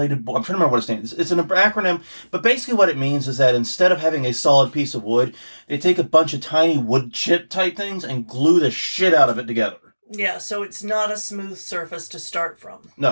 board. I'm trying to remember what it stands. It's an acronym, but basically what it means is that instead of having a solid piece of wood, they take a bunch of tiny wood chip type things and glue the shit out of it together. Yeah, so it's not a smooth surface to start from.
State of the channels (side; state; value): both; inverted; correlation -1.00